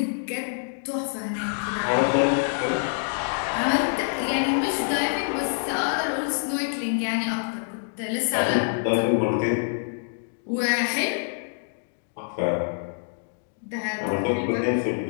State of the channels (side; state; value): right; silent; digital silence